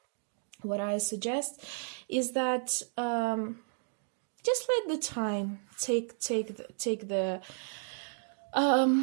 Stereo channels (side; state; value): left; silent; digital silence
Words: what I suggest is that just let the time take